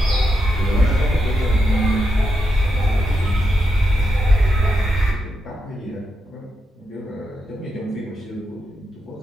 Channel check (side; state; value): both; normal; correlation 0.85